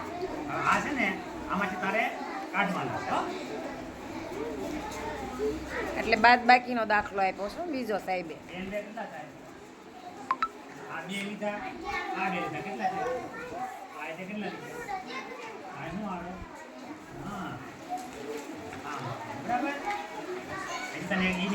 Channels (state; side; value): identical; both; correlation 1.00